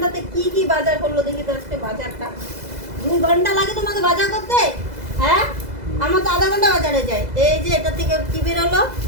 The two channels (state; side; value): late; left; 2.0 ms